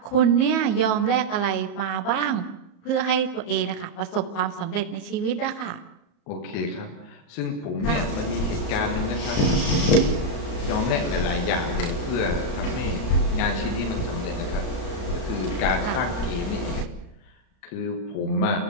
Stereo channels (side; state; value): right; late; 34 ms